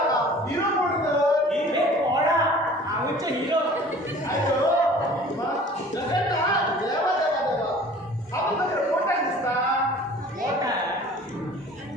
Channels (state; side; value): normal; both; correlation 0.47